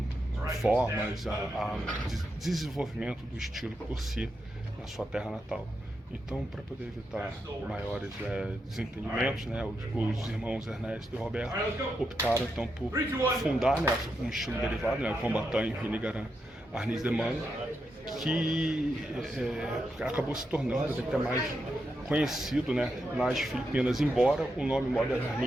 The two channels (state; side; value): normal; both; correlation 0.85